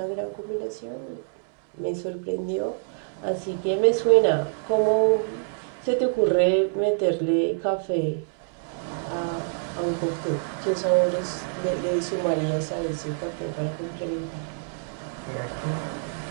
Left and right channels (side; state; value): left; silent; digital silence